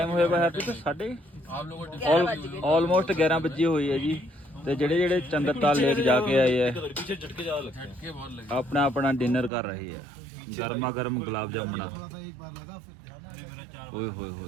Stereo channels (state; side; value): drops out; left; at 9.5 s